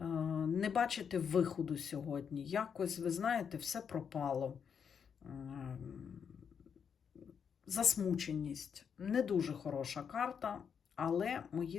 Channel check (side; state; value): right; quieter; 7.1 dB